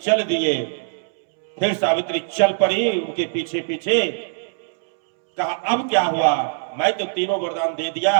दिए। फिर सावित्री चल पड़ी उनके पीछे पीछे। कहा, अब क्या हुआ, मैं तो तीनों वरदान दे दिया,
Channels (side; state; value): left; silent; 65 dB below the other